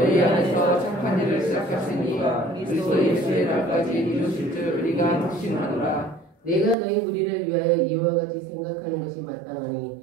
안에서 착한 일을 시작하시니 그리스도 예수의 날까지 이루실 줄 우리가 확신하노라. 내가 너희 무리를 위하여 이와 같이 생각하는 것이 마땅하니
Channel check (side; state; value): left; drops out; at 6.8 s